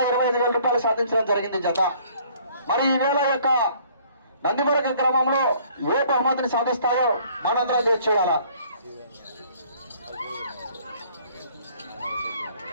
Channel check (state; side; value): inverted; both; correlation -0.58